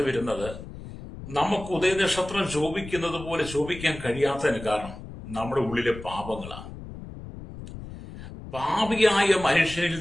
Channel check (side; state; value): left; noise; rumble, 13 dB below the sound